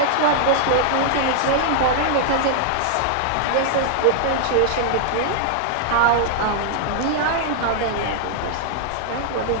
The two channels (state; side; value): different; both; correlation -0.01